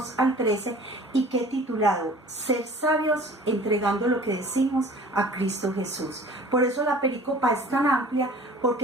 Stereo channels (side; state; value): both; normal; correlation 0.46